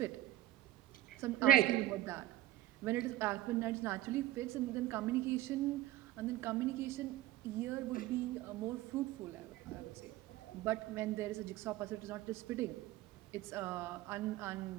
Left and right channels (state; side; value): quieter; left; 14.6 dB